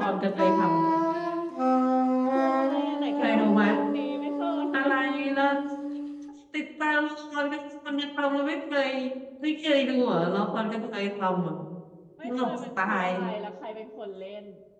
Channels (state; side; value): identical; both; correlation 1.00